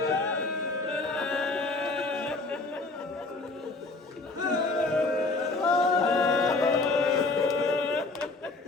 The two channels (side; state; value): right; quieter; 3.4 dB